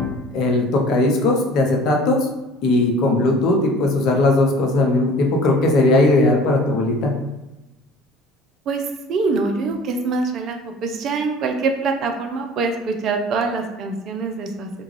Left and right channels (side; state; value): both; normal; correlation 0.46